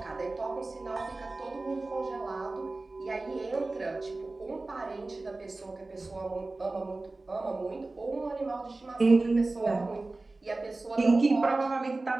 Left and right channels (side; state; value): left; quieter; 3.2 dB